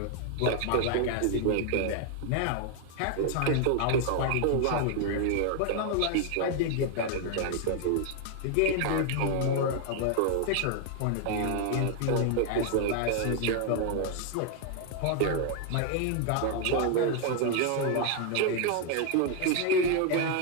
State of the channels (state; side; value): different; both; correlation 0.00